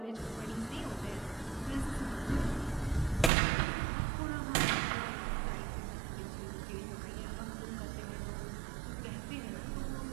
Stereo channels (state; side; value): drops out; left; at 3.3 s